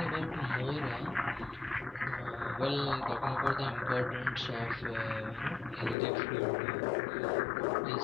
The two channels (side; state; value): right; drops out; at 6.0 s